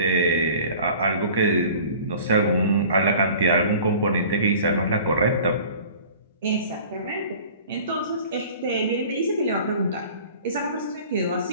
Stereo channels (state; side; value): inverted; both; correlation -0.45